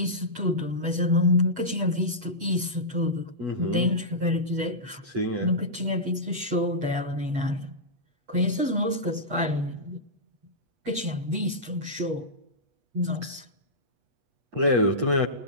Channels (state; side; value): late; left; 8.2 ms